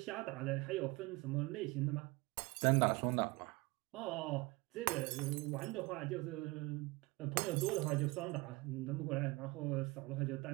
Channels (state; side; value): quieter; left; 23.8 dB